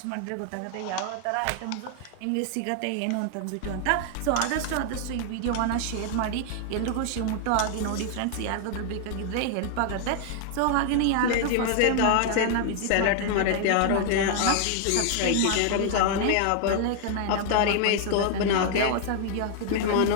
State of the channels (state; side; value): different; both; correlation 0.00